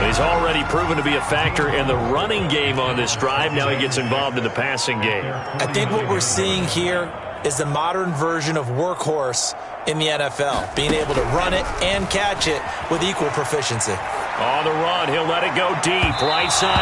He's already proven to be a factor in the running game on this drive. Now he gets involved in the passing game. I think what we're seeing here is the modern version of workhorse in the NFL, being able to run it and catch it with equal proficiency. On the run, he'll let it go deep, right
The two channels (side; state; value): both; identical; correlation 1.00